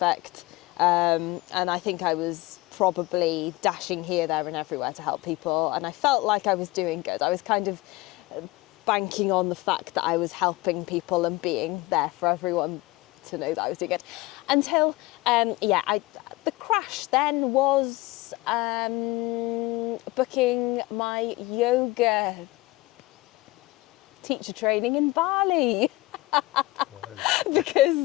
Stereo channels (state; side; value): quieter; right; 20.2 dB